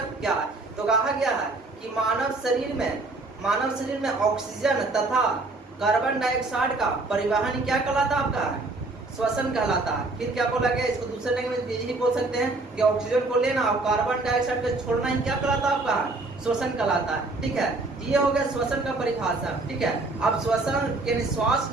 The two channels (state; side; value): quieter; left; 3.2 dB